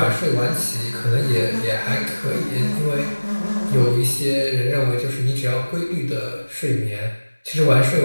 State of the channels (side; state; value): both; inverted; correlation -1.00